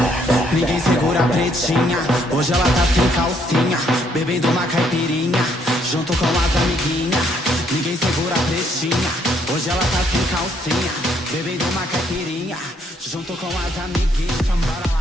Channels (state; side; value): normal; both; correlation 0.69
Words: Ninguém segura a pretinha, hoje ela tá sem calcinha, bebendo uma caipirinha, junto com as amiguinhas. Ninguém segura a pretinha, hoje ela tá sem calcinha, bebendo uma caipirinha, junto com as amiguinhas. Chambara